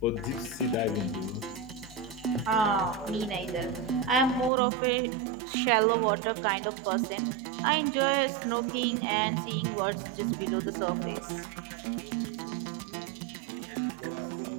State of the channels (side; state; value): left; drops out; at 4.5 s